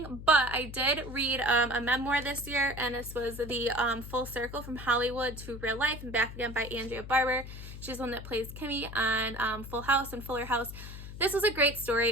but I did read a memoir this year, and this was the Full Circle from Hollywood to Real Life and Back Again by Andrea Barber. She's the one that plays Kimmy on Full House and Fuller House. This was a great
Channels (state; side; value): noise; left; hum, 11 dB below the sound